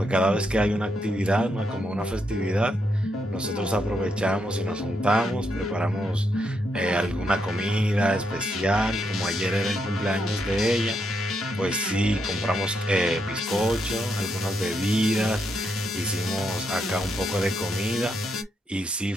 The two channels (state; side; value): normal; both; correlation 0.80